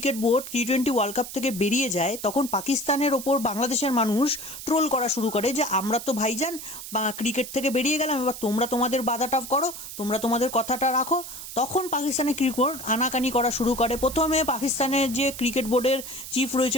বোর্ড টি-20 ওয়ার্ল্ড কাপ থেকে বেরিয়ে যায়, তখন পাকিস্তানের ওপর বাংলাদেশের মানুষ ট্রোল করা শুরু করে যে আমরা তো ভাইজান ক্রিকেট থেকে বেরিয়ে গেলাম, এবার তোমরা তোমাদের বাধাটা করো, তোমরা তোমাদের কথাটা রাখো। তখন পাকিস্তানের ক্রিকেট বোর্ড আনাকানি করা শুরু করে। প্রথমে পাকিস্তানের যে ক্রিকেট বোর্ডের চিফ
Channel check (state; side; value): noise; right; hiss, 11 dB below the sound